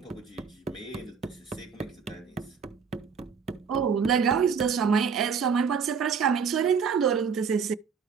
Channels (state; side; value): quieter; left; 6.3 dB